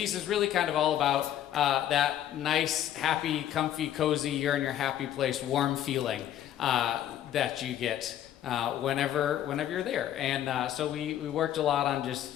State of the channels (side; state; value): right; quieter; 11.4 dB